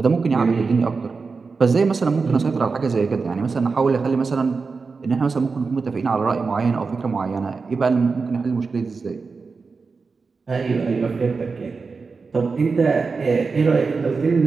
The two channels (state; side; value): quieter; left; 4.6 dB